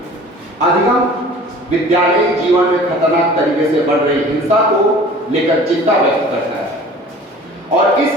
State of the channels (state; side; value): normal; both; correlation 0.45